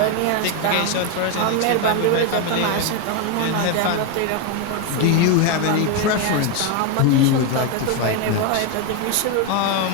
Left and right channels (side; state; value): both; different; correlation 0.02